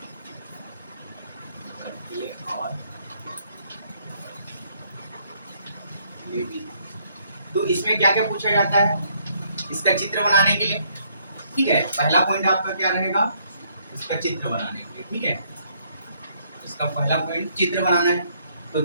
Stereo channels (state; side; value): inverted; both; correlation -0.69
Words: बर्कले और हार्टले विधि। तो इसमें क्या क्या पूछा जाता है, इसका चित्र बनाने के लिए, ठीक है। पहला पॉइंट आपका क्या रहेगा, इसका चित्र बनाने के लिए, ठीक है। इसका पहला पॉइंट चित्र बनाना है, तो